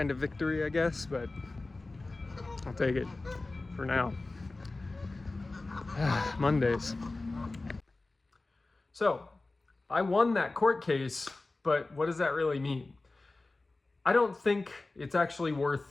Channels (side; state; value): right; quieter; 3.2 dB